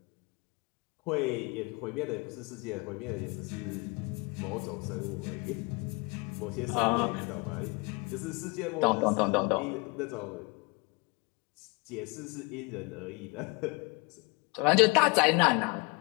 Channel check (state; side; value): quieter; right; 28.8 dB